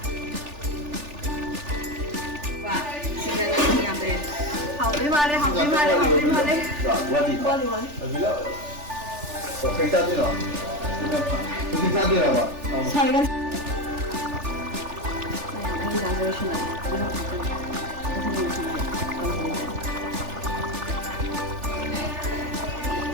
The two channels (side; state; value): left; late; 3.4 ms